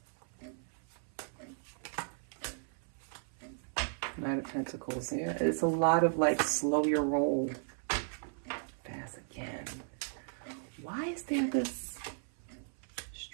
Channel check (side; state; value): left; silent; 54 dB below the other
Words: Knight of Pentacles. Yeah, it's a lot of like slow your roll. Fast again. Why is there this